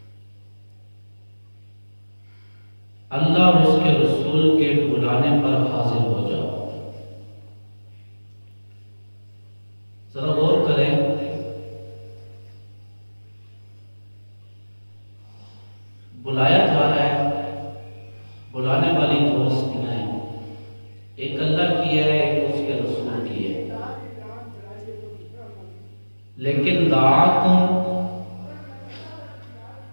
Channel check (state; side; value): inverted; both; correlation -1.00